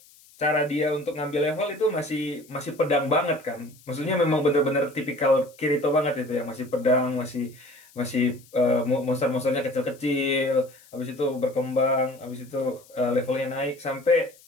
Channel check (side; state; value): left; noise; hiss, 26 dB below the sound